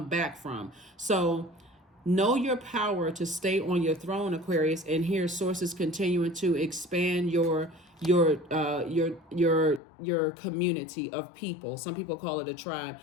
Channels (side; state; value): right; drops out; at 9.8 s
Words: back from. So know your power to stay on your throne, Aquarius. And here sources continuing to expand your community of people. Some people call it a tribe,